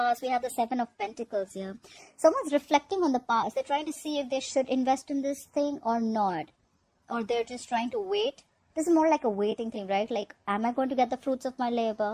We have the Seven of Pentacles here. Someone's reflecting on the past. They're trying to see if they should invest in this thing or not. Or they're just trying to wait. This is more like a waiting thing, right? Like, am I going to get the fruits of my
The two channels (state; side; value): identical; both; correlation 1.00